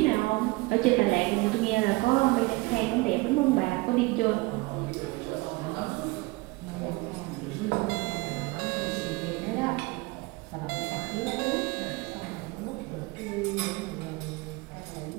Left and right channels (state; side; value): quieter; left; 23.6 dB